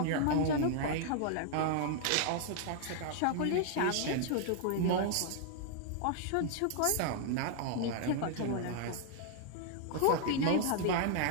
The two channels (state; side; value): different; both; correlation 0.00